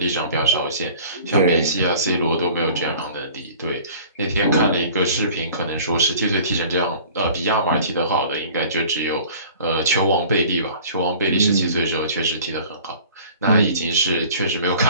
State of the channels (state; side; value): inverted; both; correlation -0.47